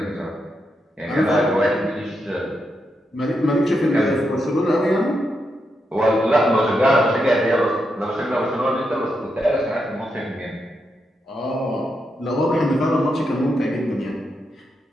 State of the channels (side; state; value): both; normal; correlation 0.83